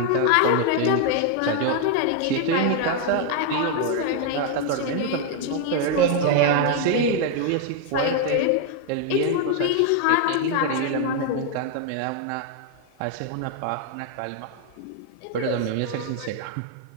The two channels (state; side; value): different; both; correlation 0.00